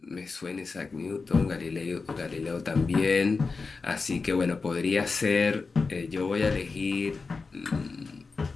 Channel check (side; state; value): right; quieter; 4.4 dB